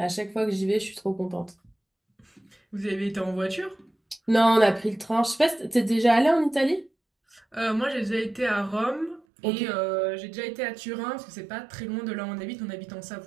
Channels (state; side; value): drops out; left; at 9.2 s